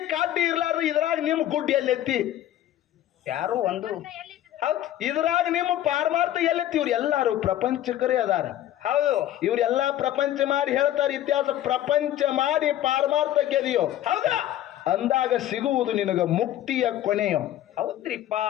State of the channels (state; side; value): quieter; right; 12.6 dB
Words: ಕಡ್ಡಿ ಇರ್ಲಾರ್ದು ಇದ್ರಾಗ ನಿಮ್ ಗುಡ್ಡಿ ಎಲ್ಲೆತ್ತಿ? ಯಾರು ಒಂದು. ಹೌದು. ಇದ್ರಾಗ ನಿಮ್ಮ ಪಾರಮಾರ್ಥ ಎಲ್ಲೆತ್ತಿ? ಇವ್ರು ಎಲ್ಲಾರು ಪ್ರಪಂಚಕರೇ ಅದಾರ. ಹೌದು. ಇವ್ರೆಲ್ಲಾ ಪ್ರಪಂಚ ಮಾಡಿ ಹೇಳ್ತಾರೆ ಇತಿಹಾಸ. ಪ್ರಪಂಚ ಮಾಡಿ ಪಾರಮಾರ್ಥ ಗೆದಿಯೋ ಹೌದಾ ಅಂದಾಗ ಸಿಗುವುದು ನಿನಗ ಮುಕ್ತಿಯ ಕೊನೆಯೋ. ಹೌದ್ರಿಪ್ಪ.